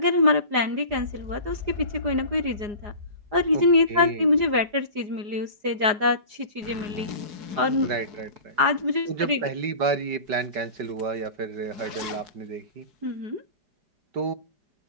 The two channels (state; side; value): late; left; 4.9 ms